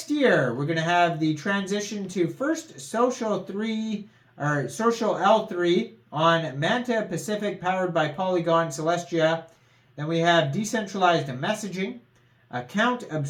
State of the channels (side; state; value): both; identical; correlation 1.00